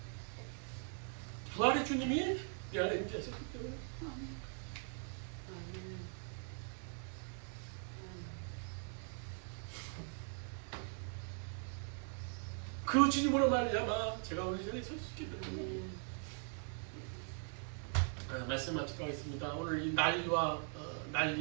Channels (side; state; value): left; silent; 50 dB below the other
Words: 부활의 주님이 내 안에 임재하셨기 때문에. 그 주님으로 말미암아 제가 오늘 이 자리에 설 수 있게 됩니다. 말씀 마치도록 하겠습니다. 오늘 이 난리와